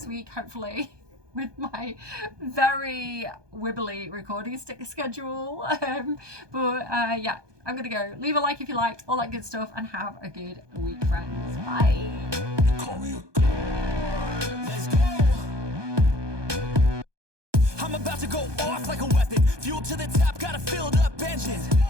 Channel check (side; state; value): left; late; 1.2 ms